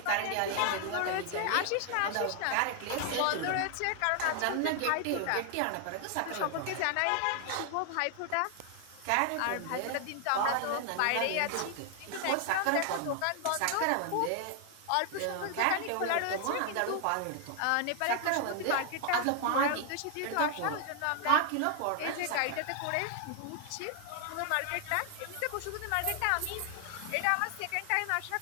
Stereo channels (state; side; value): different; both; correlation 0.00